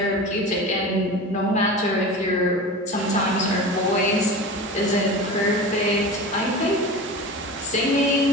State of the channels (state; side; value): normal; both; correlation 0.31